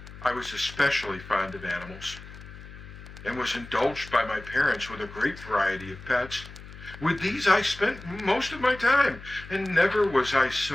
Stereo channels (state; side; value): noise; left; hum, 16 dB below the sound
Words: I was especially fond of animals, and was indulged by my parents with a great variety of pets. With these I spent most of my time, and never was I